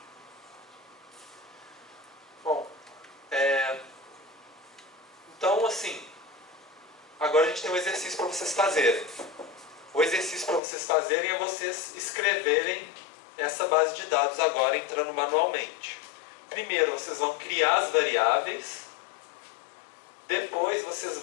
Bom, então assim, agora a gente tem um exercício para vocês fazerem. O exercício para vocês fazerem é vocês escreverem essa base de dados agora entrando manualmente. Primeiro vocês vão criar as variáveis, depois vocês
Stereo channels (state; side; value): drops out; right; at 10.6 s